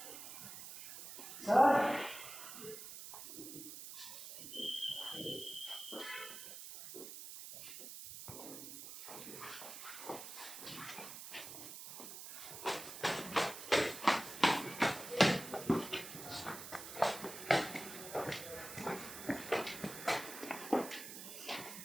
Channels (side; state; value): right; noise; hiss, 10 dB below the sound